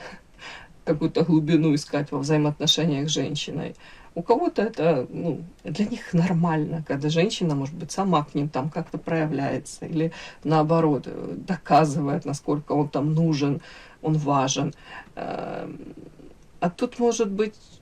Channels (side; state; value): both; identical; correlation 1.00